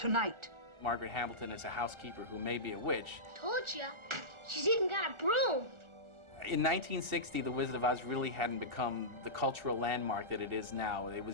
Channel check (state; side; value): late; left; 1.4 ms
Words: Margaret Hamilton is a housekeeper who may be a witch. Told ya. She's even got a broom. In 1960, The Wizard of Oz really hadn't become the cultural landmark that it is now. It